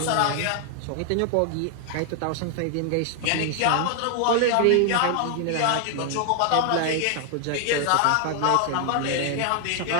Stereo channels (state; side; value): different; both; correlation 0.00